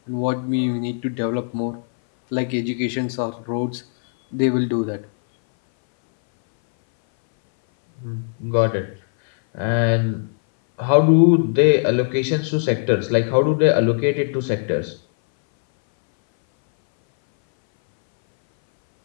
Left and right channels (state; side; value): silent; right; 61 dB below the other